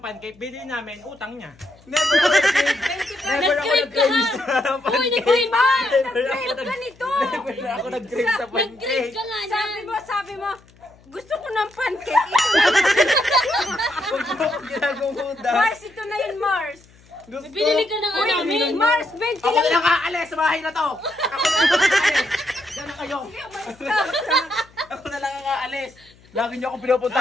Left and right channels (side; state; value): left; noise; hum, 28 dB below the sound